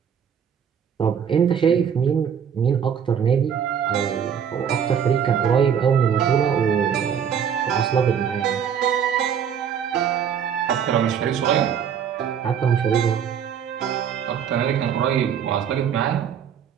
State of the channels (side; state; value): left; quieter; 8.0 dB